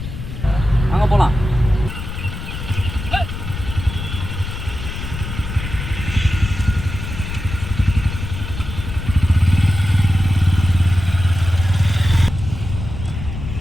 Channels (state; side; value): noise; left; rumble, 7 dB below the sound